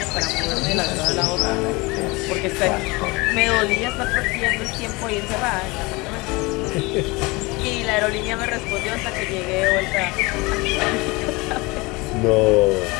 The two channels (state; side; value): quieter; right; 24.5 dB